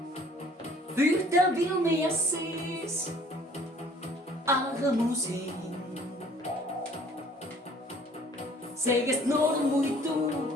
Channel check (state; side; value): normal; both; correlation 0.54